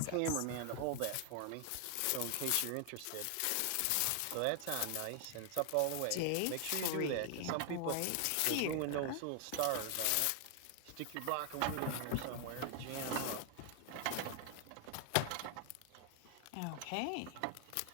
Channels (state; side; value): different; both; correlation 0.00